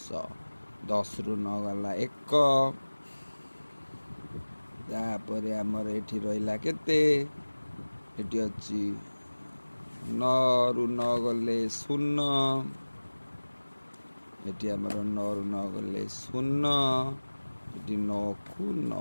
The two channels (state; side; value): inverted; both; correlation -1.00